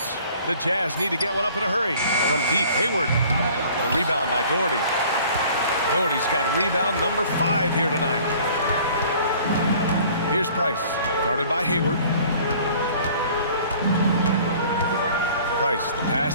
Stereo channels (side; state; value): both; inverted; correlation -0.51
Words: The Jazz need to get one up in a hurry. From deep, Hayward. The rebound by Doherty. Doherty's got rebound number 5 here tonight. Here's Price, guarded by Hayward. Price, the